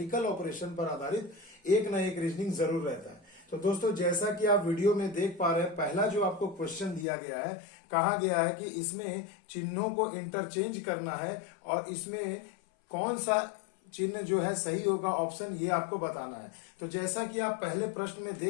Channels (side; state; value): right; drops out; at 7.1 s